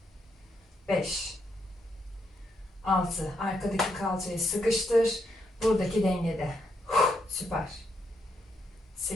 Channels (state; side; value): normal; both; correlation 0.78